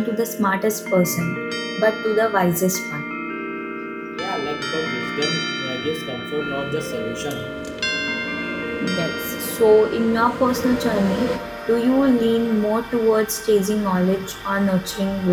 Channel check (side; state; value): both; identical; correlation 1.00